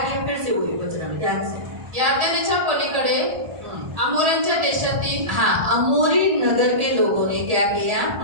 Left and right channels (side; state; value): left; late; 1.7 ms